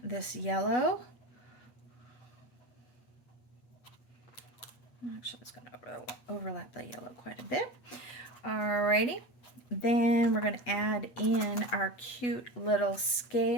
this yellow. Actually, it's going to overlap the yellow quite a bit. Alrighty. Then we're going to add in our cute little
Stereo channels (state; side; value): late; right; 8.2 ms